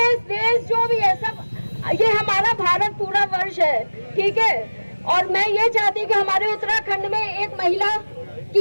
देश जो भी है सब, ये हमारा भारत पूरा वर्ष है, ठीक है। और मैं ये चाहती कि हमारे उत्तराखंड में एक महिला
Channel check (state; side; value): inverted; both; correlation -1.00